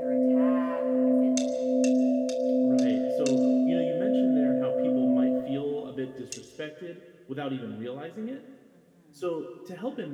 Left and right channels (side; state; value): both; identical; correlation 1.00